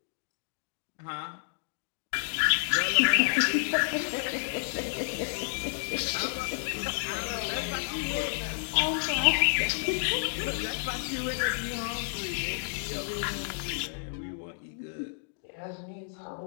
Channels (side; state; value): right; silent; digital silence